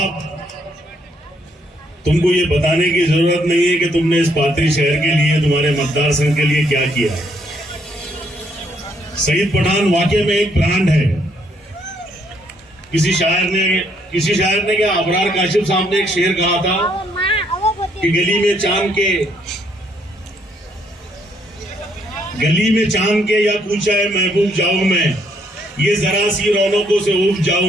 तुमको ये बताने की जरूरत नहीं है कि तुमने इस पाथरी शहर के लिए, तुम्हारे मतदार संघ के लिए क्या किया। शहीद पठान वाकई में एक ब्रांड है। किसी शायर ने क्या, अबरार काशिफ साहब ने एक शेर कहा था कि गली में चांद के या पूछा है महबूब जाऊं मैं, ये जरा सी रौनकों से उब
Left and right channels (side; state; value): both; normal; correlation 0.70